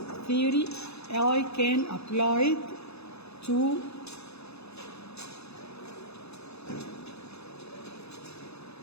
theory I can apply it to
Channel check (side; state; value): right; late; 0.79 ms